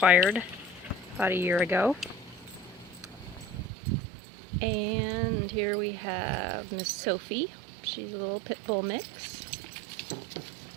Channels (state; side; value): drops out; left; at 3.7 s